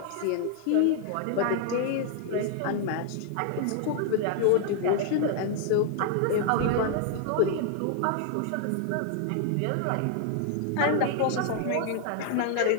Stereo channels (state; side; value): different; both; correlation 0.00